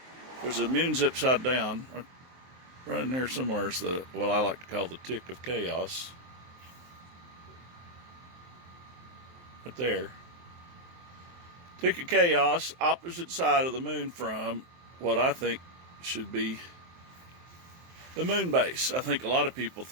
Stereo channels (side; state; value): left; late; 23 ms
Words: there's the moon's upside down. Right in there somewhere is what I like to call the tick of chaos. Right there. Tick of chaos, opposite side of the moon from what I think should be the moon base. I think a lot of people